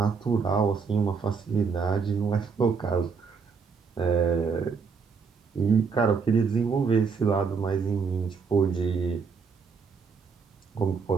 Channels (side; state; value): left; quieter; 5.4 dB